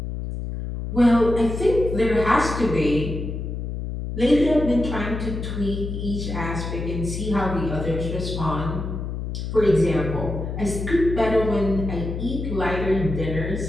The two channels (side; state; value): left; noise; hum, 5 dB below the sound